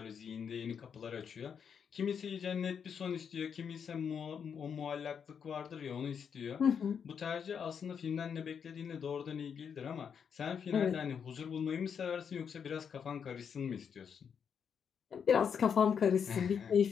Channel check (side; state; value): right; quieter; 7.2 dB